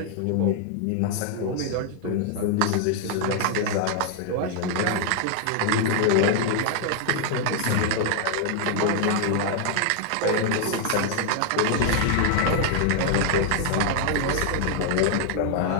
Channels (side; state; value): both; different; correlation 0.00